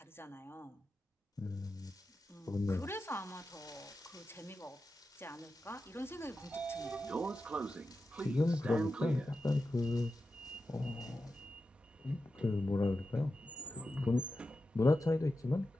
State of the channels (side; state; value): both; normal; correlation 0.91